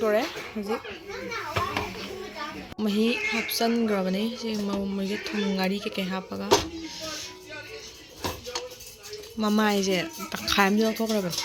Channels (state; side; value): identical; both; correlation 1.00